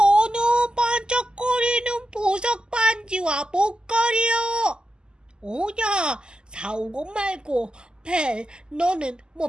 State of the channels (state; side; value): late; left; 0.047 ms